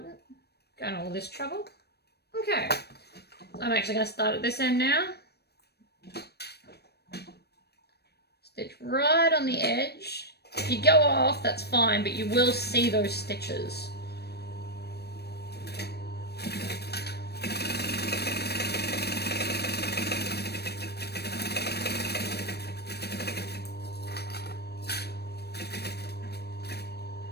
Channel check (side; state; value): right; late; 0.47 ms